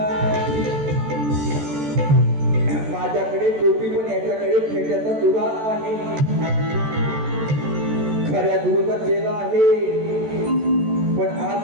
माझ्याकडे टोपी पण याच्याकडे फेट्याचा तुरा आहे. खऱ्या गुरुचा केला आहे पण आज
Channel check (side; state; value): left; late; 14 ms